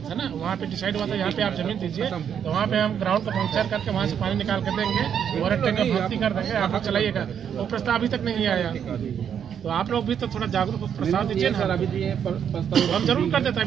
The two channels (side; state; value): left; quieter; 8.3 dB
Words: था ना, वहाँ पे डिसाइड हुआ था यहाँ पे आप जमीन दीजिए, तो वहाँ पे हम ग्राउंड का पंक्चर करके वहाँ से पानी निकाल कर देंगे और टैंक का भर्ती कर देंगे, आप लोग चलाइएगा। वो प्रस्ताव अभी तक नहीं आया, तो आप लोग भी तो थोड़ा जागरूक हो, प्रस्ताव दीजिए ना। अभी हम जरूर कर देते,